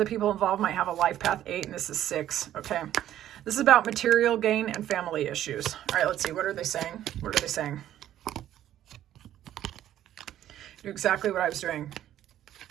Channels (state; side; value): quieter; left; 12.0 dB